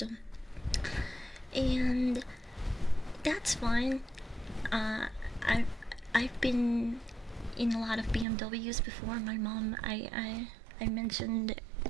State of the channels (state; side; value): drops out; left; at 8.2 s